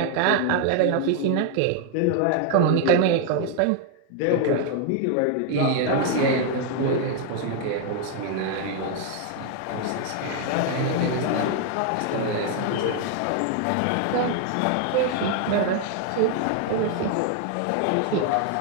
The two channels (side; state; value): both; different; correlation 0.00